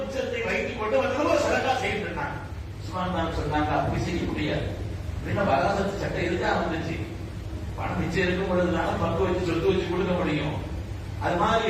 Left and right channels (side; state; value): both; identical; correlation 1.00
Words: மிச்சத்தை வைத்துக் கொண்டு வந்து சதகா செய்து இருந்தாங்க. சொன்னாங்க, அப்படி செய்ய முடியாது. வராசத்து சட்டம் இருக்கா வந்துச்சு. பணம் மிச்சம் இருக்கும் பொழுதுனால பங்கு வச்சு சொத்து வச்சு கொடுக்க முடியும். அது